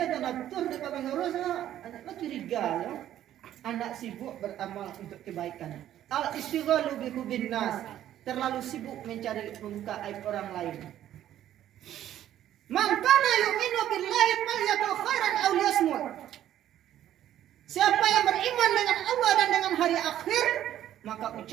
dan atur dekat pengurus anak curiga ya. Anak sibuk beramal untuk kebaikan. Al istighalu bi hubin nas, terlalu sibuk mencari membuka aib orang lain. Man kana yu'minu billahi falyaqul khairan aw liyasmut. Siapa yang beriman dengan Allah dan dengan hari akhir, maka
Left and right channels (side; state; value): left; quieter; 11.9 dB